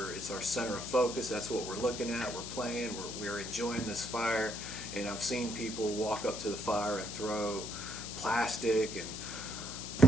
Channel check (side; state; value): left; noise; hiss, 7 dB below the sound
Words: it's our center of focus. That's what we're looking at. We're playing. We're enjoying this fire. And I've seen people walk up to the fire and throw plastic, and